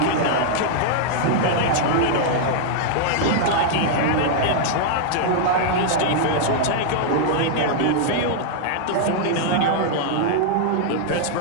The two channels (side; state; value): both; different; correlation -0.01